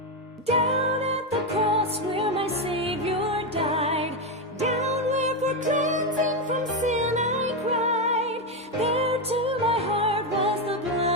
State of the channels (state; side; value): normal; both; correlation 0.08